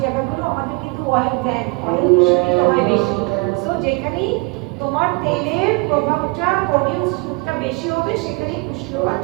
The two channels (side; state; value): left; quieter; 28.8 dB